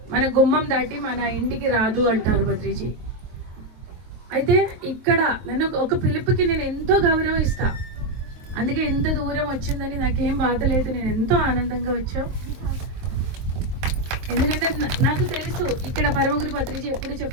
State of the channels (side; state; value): left; late; 23 ms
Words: మన గుమ్మం దాటి మన ఇంటికి రాదు అంటారు పత్రిజీ. అయితే ఇక్కడ నన్ను ఒక పిలుపుకి నేను ఎంతో గౌరవం ఇస్తా. అందుకే ఎంత దూరం వచ్చిందని నాకేం బాధ లేదు, నేను ఎంతో ఆనందంగా వచ్చావు. ఎందుకంటే నాకు తెలుసు ఇక్కడ పరమగురు పత్రిజీ ఎప్పుడు